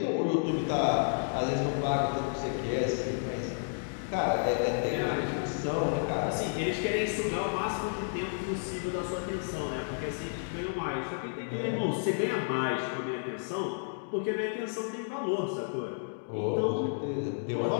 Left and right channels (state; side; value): silent; right; digital silence